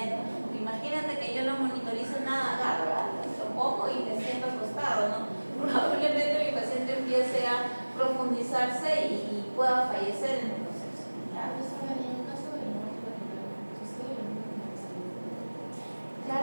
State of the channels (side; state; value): both; inverted; correlation -1.00